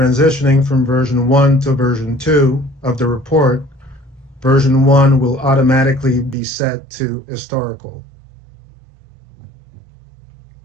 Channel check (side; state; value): left; drops out; at 6.4 s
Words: from version 1 to version 2 of the report, version 1 will automatically be set to historical.